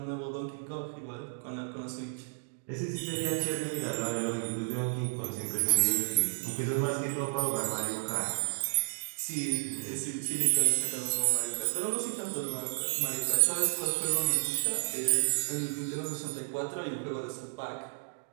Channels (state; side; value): silent; left; digital silence